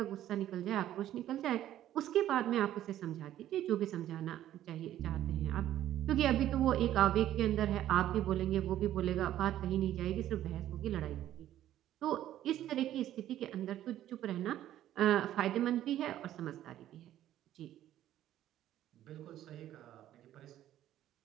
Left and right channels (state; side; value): quieter; left; 12.5 dB